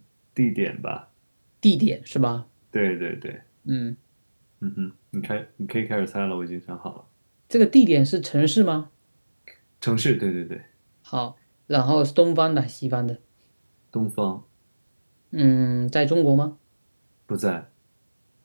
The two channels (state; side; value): inverted; both; correlation -1.00